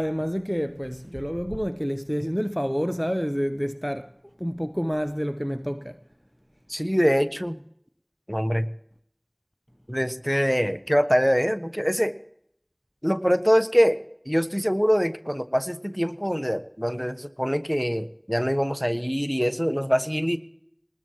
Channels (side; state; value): both; identical; correlation 1.00